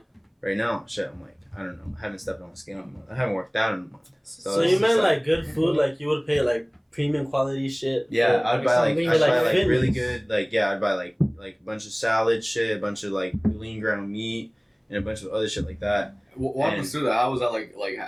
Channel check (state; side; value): identical; both; correlation 1.00